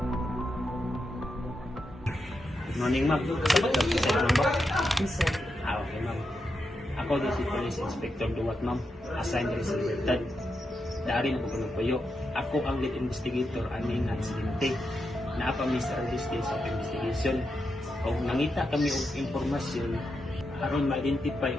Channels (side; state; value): both; normal; correlation 0.86